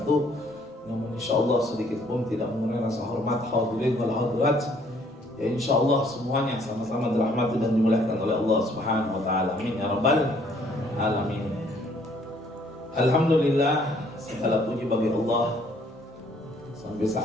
namun insyaallah sedikit pun tidak mengurangi rasa hormat hadirin wal hadirat. Ya insyaallah semuanya sama-sama dirahmati dan dimuliakan oleh Allah Subhanahu wa taala. Amin ya rabbal alamin. Alhamdulillah, segala puji bagi Allah. Sampai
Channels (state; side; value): normal; both; correlation 0.63